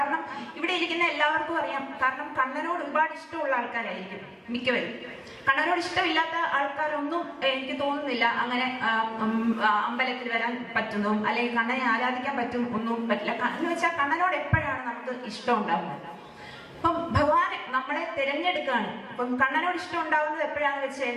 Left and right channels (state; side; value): identical; both; correlation 1.00